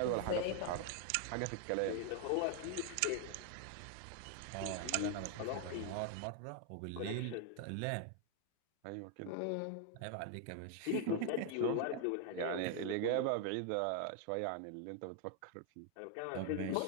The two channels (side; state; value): both; different; correlation 0.00